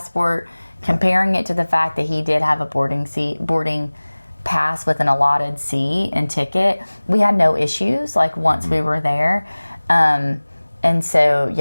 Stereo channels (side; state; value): both; inverted; correlation -1.00